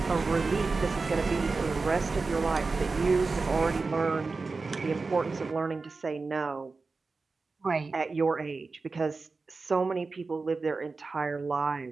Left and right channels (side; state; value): left; quieter; 4.0 dB